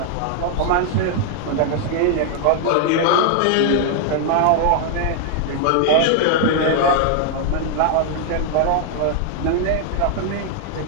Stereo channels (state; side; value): different; both; correlation 0.00